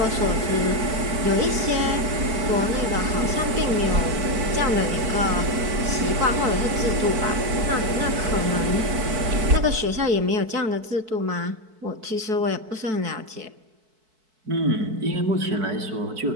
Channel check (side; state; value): left; late; 4.6 ms